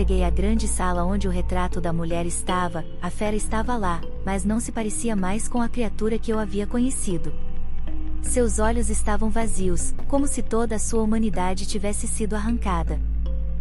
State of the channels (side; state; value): both; identical; correlation 1.00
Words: à grande sala onde o retrato da mulher estava, a fera estava lá, mas não se parecia mais com a criatura que eu havia conhecido. Seus olhos estavam vazios, como se toda a sua humanidade tivesse sido arrancada.